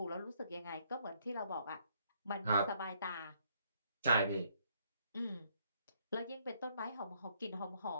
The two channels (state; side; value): inverted; both; correlation -0.69